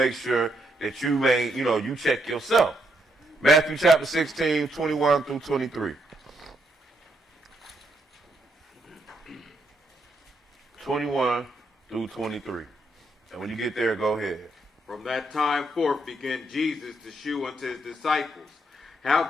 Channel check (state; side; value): normal; both; correlation 0.77